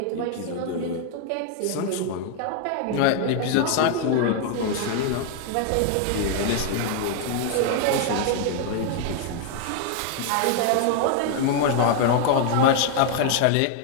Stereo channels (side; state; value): both; different; correlation 0.00